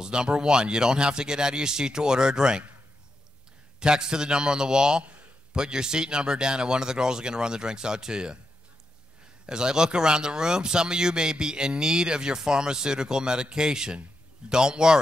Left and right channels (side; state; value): both; normal; correlation 0.85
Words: Number one, you don't have to get out of your seat to order a drink. Text to the number on the wall, put your seat number down, and one of the girls are going to run the drinks out to you. As I look around the room, some of you may be in need of your pharmaceutical medication. Don't